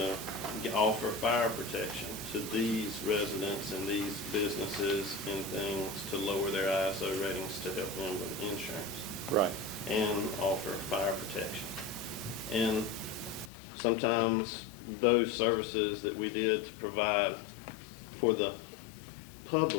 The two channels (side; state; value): right; drops out; at 13.5 s